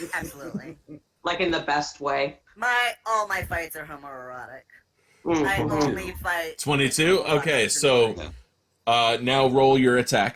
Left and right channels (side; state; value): both; identical; correlation 1.00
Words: Absolutely. Like in the best way? All my fights are homoerotic. Mm. I only fight 22? Okay, so now roll your